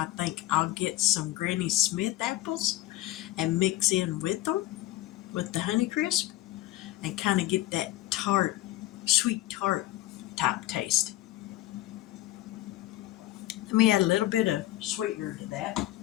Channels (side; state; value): right; quieter; 16.0 dB